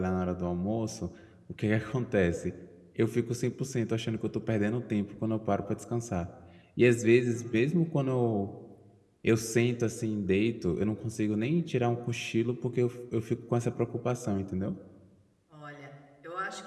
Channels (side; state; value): both; identical; correlation 1.00